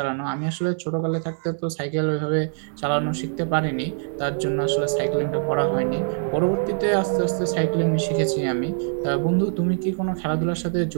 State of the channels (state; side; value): silent; left; digital silence